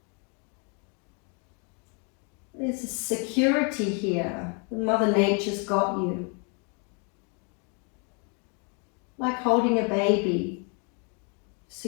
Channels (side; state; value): right; quieter; 36.7 dB